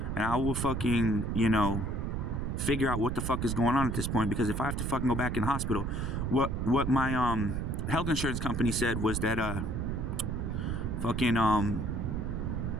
and I will fucking, you know, figure out what the fuck is going on at this point. Because if I have to fucking go back in the hospital, what my health insurance company said was that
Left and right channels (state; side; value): noise; right; rumble, 1 dB below the sound